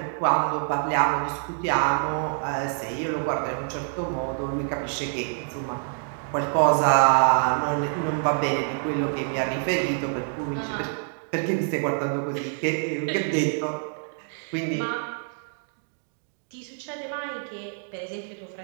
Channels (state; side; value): silent; left; 61 dB below the other